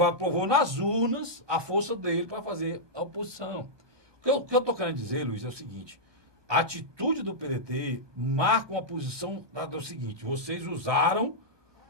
provou nas urnas a força dele para fazer a oposição. O que eu estou querendo dizer, Luiz, é o seguinte: a atitude do PDT marca uma posição do seguinte: vocês usaram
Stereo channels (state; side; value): late; left; 1.2 ms